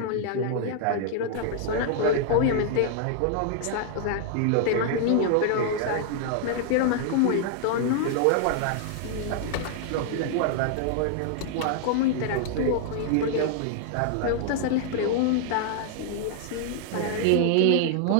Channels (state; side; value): different; both; correlation -0.01